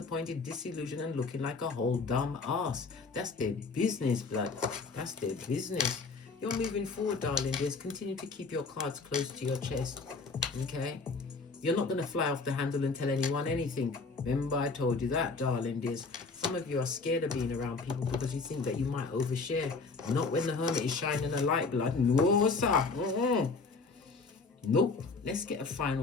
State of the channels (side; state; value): right; quieter; 4.2 dB